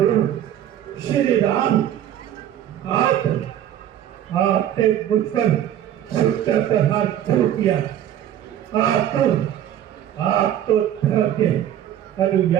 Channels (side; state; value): left; quieter; 11.1 dB